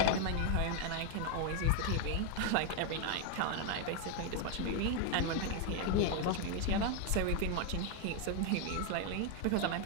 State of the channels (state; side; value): different; both; correlation 0.01